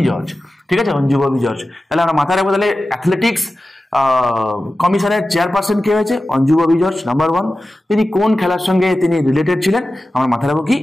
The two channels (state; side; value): normal; both; correlation 0.94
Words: জর্জ। ঠিক আছে, অঞ্জু ববি জর্জ। তাহলে আমরা মাথায় রাখবো, তাহলে অ্যাথলেটিক্স কমিশনের চেয়ারপারসন কে হয়েছে? অঞ্জু ববি জর্জ। নাম্বার 1, তিনি কোন খেলার সঙ্গে তিনি রিলেটেড ছিলেন? আমরা মাথায় রাখবো কি,